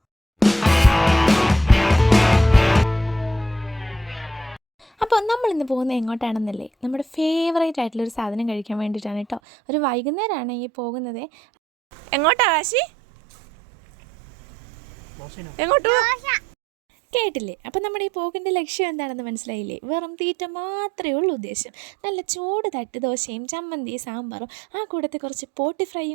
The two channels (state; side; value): drops out; left; at 9.4 s